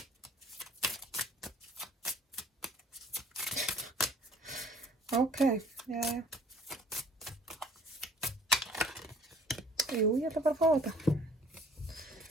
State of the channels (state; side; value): normal; both; correlation 0.54